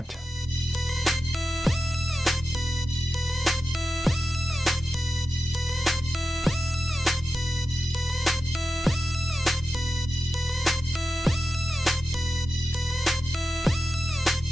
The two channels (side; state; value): both; normal; correlation 0.91